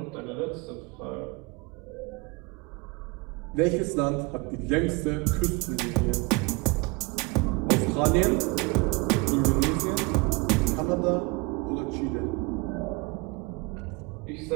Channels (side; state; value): left; quieter; 26.4 dB